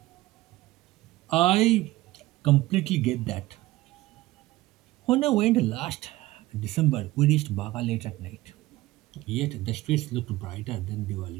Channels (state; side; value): quieter; left; 17.9 dB